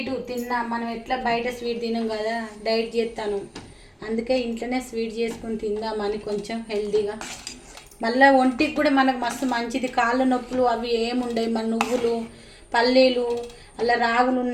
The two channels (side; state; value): both; identical; correlation 1.00